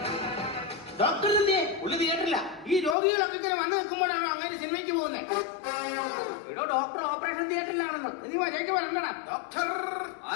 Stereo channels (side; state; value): right; drops out; at 3.0 s